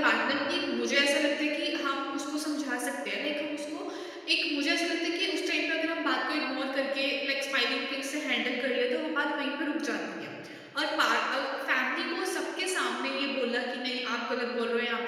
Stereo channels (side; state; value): both; identical; correlation 1.00